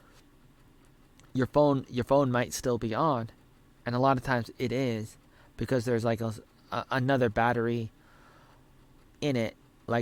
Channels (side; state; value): both; identical; correlation 1.00